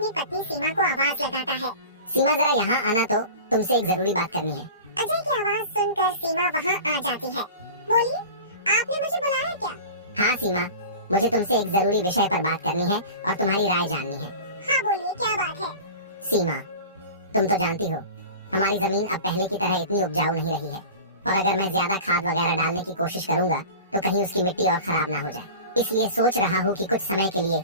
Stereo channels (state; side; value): inverted; both; correlation -0.36